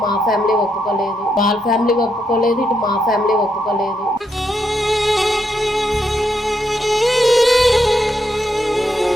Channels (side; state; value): both; normal; correlation 0.80